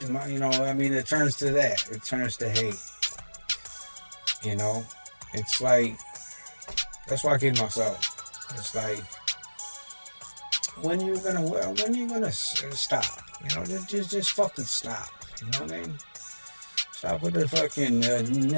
I mean, it turns to that. It turns to hate. It's like that's why I kid myself. It's like when you gonna stop? Just fucking stop. You know what I mean? Stop with the fucking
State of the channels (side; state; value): both; inverted; correlation -1.00